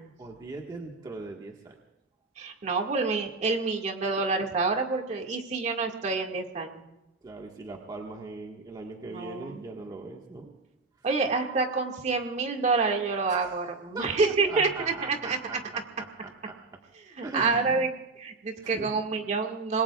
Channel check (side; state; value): left; quieter; 3.7 dB